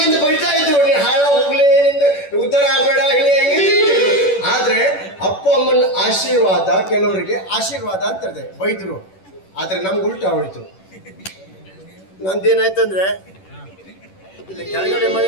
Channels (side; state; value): right; late; 11 ms